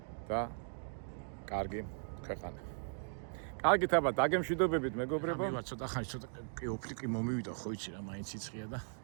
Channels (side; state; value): left; silent; digital silence